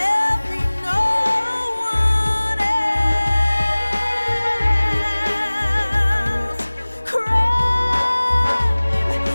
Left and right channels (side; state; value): both; inverted; correlation -1.00